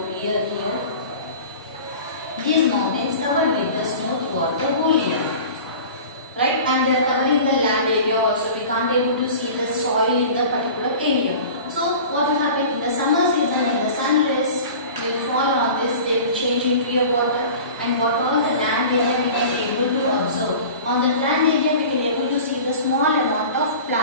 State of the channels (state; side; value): inverted; both; correlation -0.39